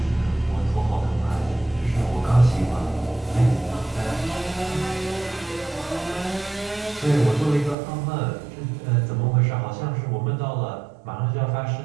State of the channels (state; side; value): drops out; left; at 7.8 s